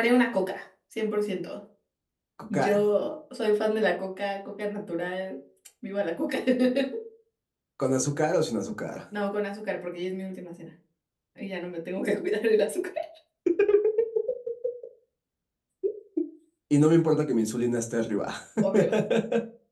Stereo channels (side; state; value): both; identical; correlation 1.00